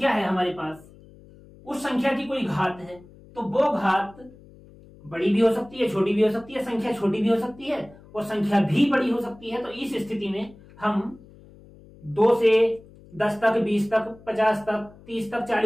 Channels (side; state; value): left; noise; hum, 23 dB below the sound